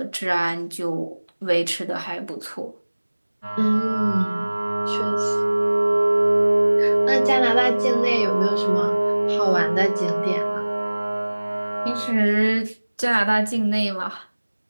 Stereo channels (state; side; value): inverted; both; correlation -1.00